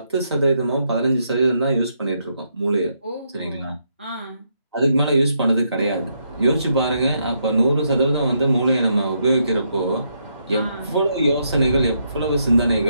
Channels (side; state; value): both; inverted; correlation -0.78